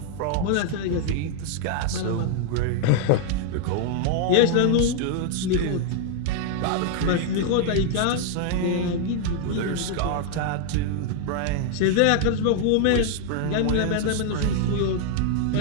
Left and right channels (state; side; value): different; both; correlation 0.00